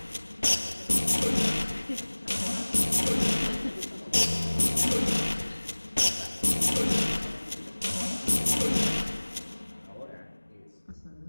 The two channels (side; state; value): both; inverted; correlation -1.00